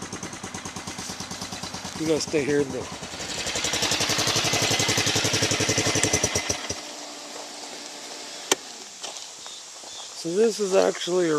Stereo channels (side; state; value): both; identical; correlation 1.00